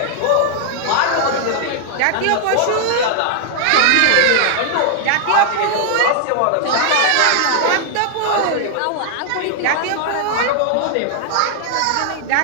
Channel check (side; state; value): both; different; correlation -0.01